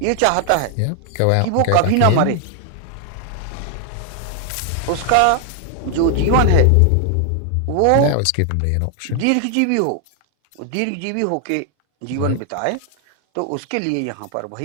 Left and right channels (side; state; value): both; different; correlation 0.00